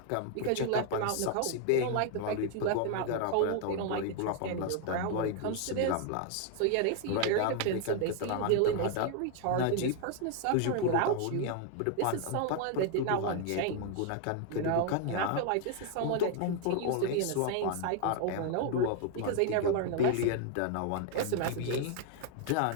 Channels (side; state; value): both; different; correlation 0.00